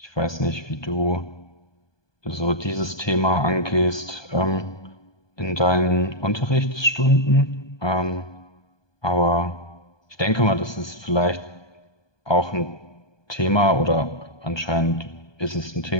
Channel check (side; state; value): right; late; 1.2 ms